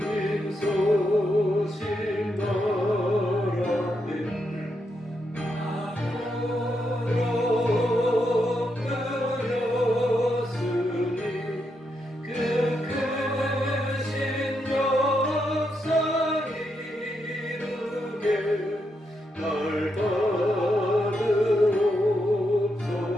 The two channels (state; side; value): normal; both; correlation 0.82